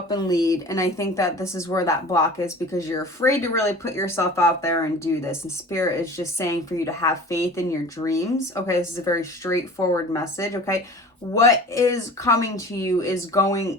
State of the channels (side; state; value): both; normal; correlation 0.40